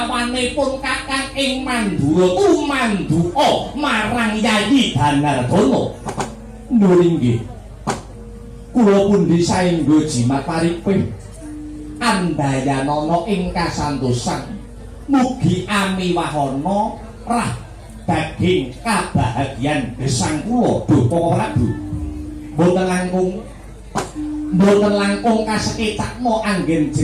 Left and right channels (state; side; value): identical; both; correlation 1.00